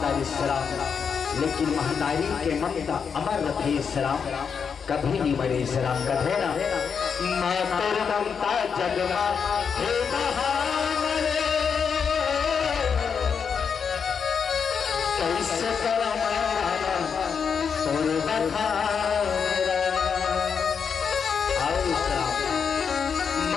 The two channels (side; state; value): right; quieter; 6.5 dB